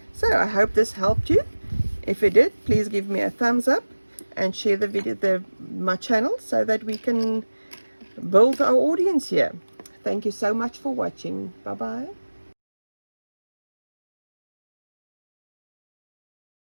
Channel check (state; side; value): inverted; both; correlation -1.00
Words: So I hope this helped you. If it did, please give me a thumbs up and share the video, my channel, so that we can build our audience here. Thank you so much for watching. Bye bye.